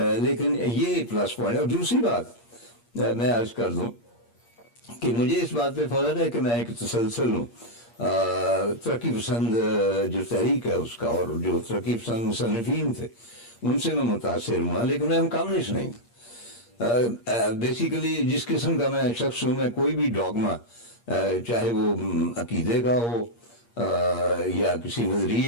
लेकिन ये प्लस पॉइंट है। और दूसरी बात मैं अर्ज कर दूं कि मुझे इस बात पे फख्र है कि मैं एक तसलसल हूँ तरक्की पसंद जो तहरीक है उसका, और जो तरक्की पसंद मुसन्निफीन थे उनसे मैं मुतासिर हुआ, लेकिन मैं कम्युनिस्ट नहीं था। बेसिकली जिस किस्म का मैं शख्स हूँ, मैं कोई भी डॉगमा, चाहे वो अकीदे का हो या किसी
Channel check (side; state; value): right; late; 8.5 ms